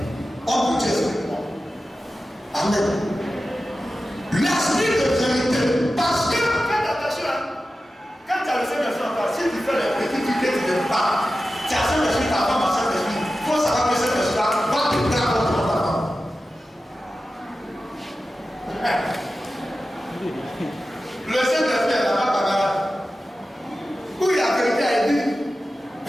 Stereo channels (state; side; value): normal; both; correlation 0.93